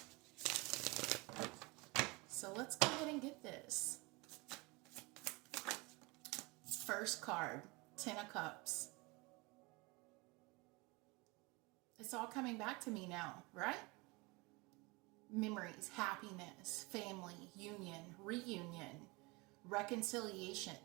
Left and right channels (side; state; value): left; quieter; 25.9 dB